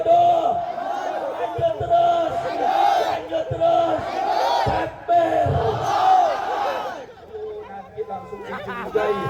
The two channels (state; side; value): identical; both; correlation 1.00